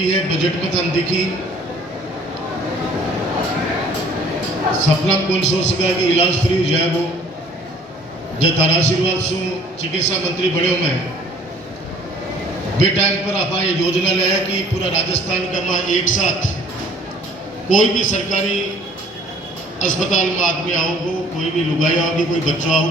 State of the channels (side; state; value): both; normal; correlation 0.54